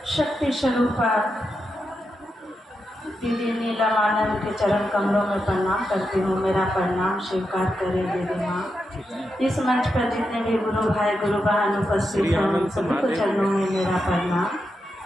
शक्ति स्वरूपा दीदी नीला मानव के चरण कमलों में प्रणाम करती हूँ, मेरा प्रणाम स्वीकार करें दीदी माँ। इस मंच पर जितने भी गुरु भाई गुरु बहन उपस्थित हैं उन सभी को चरणों में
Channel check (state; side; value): normal; both; correlation 0.86